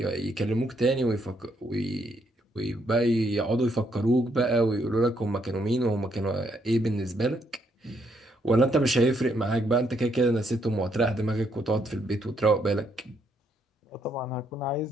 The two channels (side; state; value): both; normal; correlation 0.74